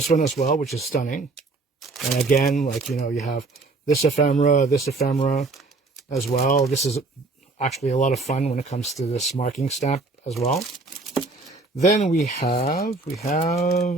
one as well, which is stunning. And again, you have this ephemera as well. This is actually a lot of fun when it comes to this marking stamp as well. Then we have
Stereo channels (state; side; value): quieter; left; 3.5 dB